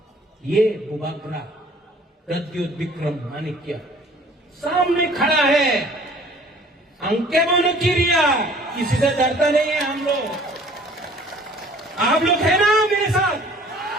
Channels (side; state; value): both; normal; correlation 0.52